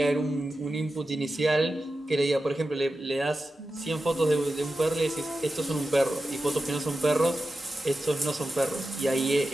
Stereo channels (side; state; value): both; normal; correlation 0.92